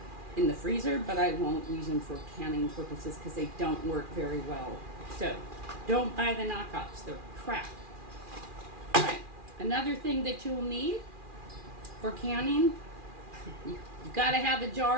the freezer, but I won't use them for canning purposes because they don't work very well. So don't buy the knockoffs, they're crap. Alright, another thing that you'll need for canning, you've got to have a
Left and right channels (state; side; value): late; left; 2.4 ms